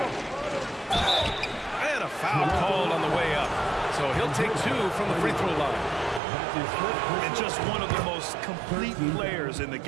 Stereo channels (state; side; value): drops out; left; at 6.2 s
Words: And a foul called on the way up. So he'll take 2 from the free throw line. And just one of the most complete players in the